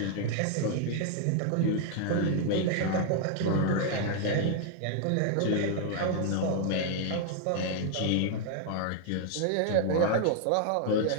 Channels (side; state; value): both; different; correlation 0.00